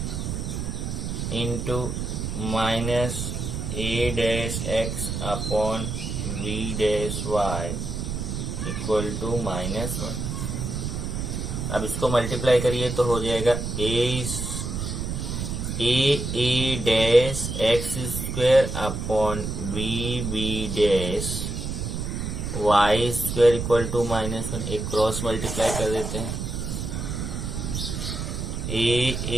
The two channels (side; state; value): right; noise; rumble, 4 dB below the sound